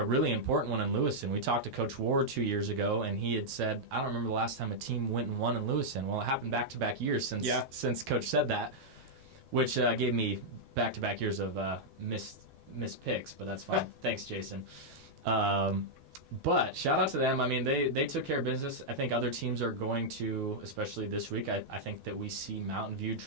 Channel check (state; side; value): late; left; 12 ms